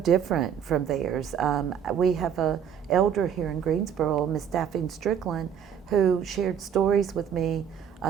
from theirs. We have a elder here in Greensboro, Miss Daphne Strickland, who shared stories with me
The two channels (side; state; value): left; quieter; 8.2 dB